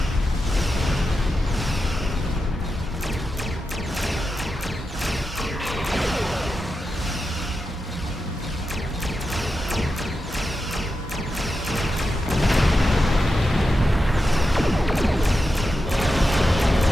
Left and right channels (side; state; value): both; normal; correlation 0.89